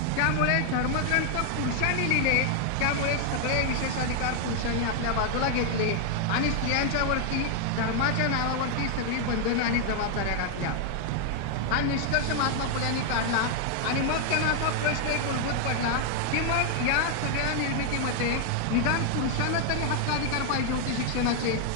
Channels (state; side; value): different; both; correlation 0.00